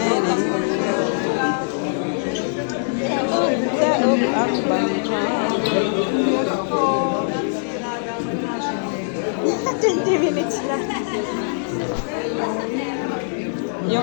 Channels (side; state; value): right; silent; 63 dB below the other